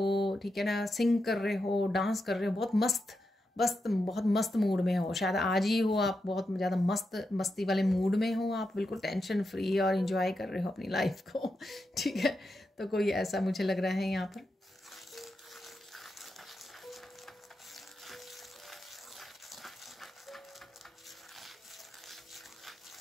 ठीक है ना, सिंग कर रहे हो, डांस कर रहे हो, बहुत मस्त मूड में हो, शायद आज ही हो आप बहुत ज़्यादा मस्ती वाले मूड में हो, आप बिल्कुल टेंशन फ्री और इंजॉय कर रहे हो अपनी लाइफ को ठीक है, तो कोई ऐसा मुझे लग रहा है यहाँ पर।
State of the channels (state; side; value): normal; both; correlation 0.87